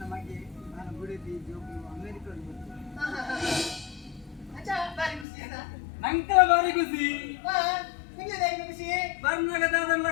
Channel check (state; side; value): drops out; right; at 5.2 s